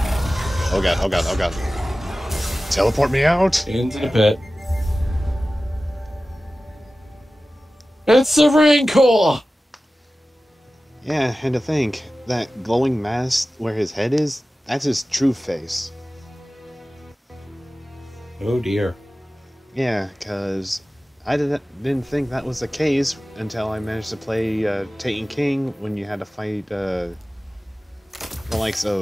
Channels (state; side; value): normal; both; correlation 0.96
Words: Oh god, oh god, oh god. Teleport me out! Into the pit. It's the Rancor! Yeah, and to think, that glowing mass where his head is, that's his true face. Oh dear. Yeah, because I didn't think that was the case until I managed to play Taken King when you had to fight the likes